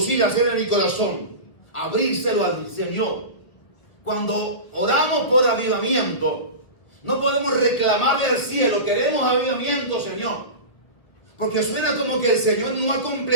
hacer en mi corazón. Abrírselo al Señor. Cuando oramos por avivamiento, no podemos reclamarle al cielo, queremos avivamiento, Señor. Porque suena como que el Señor no ha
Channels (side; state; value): right; late; 1.6 ms